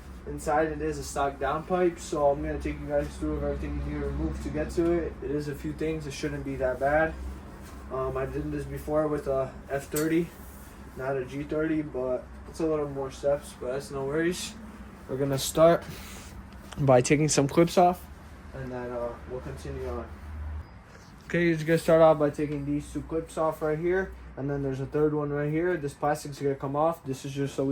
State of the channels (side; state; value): both; identical; correlation 1.00